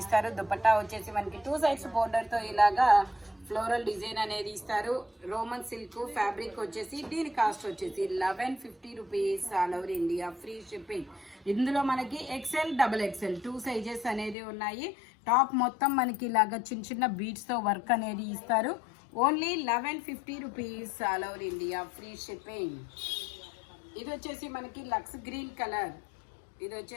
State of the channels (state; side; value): drops out; right; at 14.4 s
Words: ఇస్తారు. దుపట్టా వచ్చేసి మనకి 2 సైడ్స్ బోర్డర్ తో ఇలాగా ఫ్లోరల్ డిజైన్ అనేది ఇస్తారు. రోమన్ సిల్క్ ఫ్యాబ్రిక్ వచ్చేసి దీని కాస్ట్ వచ్చేసి 1150 rupees. All over India free shipping. ఇందులో మనకి ఎక్సెల్ డబుల్ ఎక్సెల్ 2 సైజెస్ అనేది ఉన్నాయి. టాప్ మొత్తం మనకి ఇలాగా చిన్న చిన్న బీడ్స్ తో వర్క్ అనేది ఇస్తారు. Only 1150 rupees. All over India free shipping. ఇది వచ్చేసి మనకి లక్స్ గ్రీన్ కలర్. ఇది